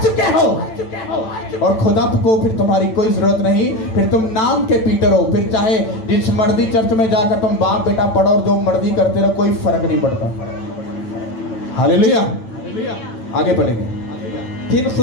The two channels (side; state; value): right; late; 9.0 ms